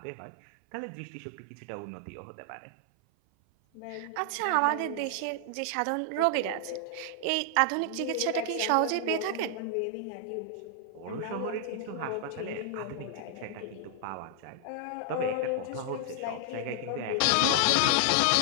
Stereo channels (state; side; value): different; both; correlation 0.00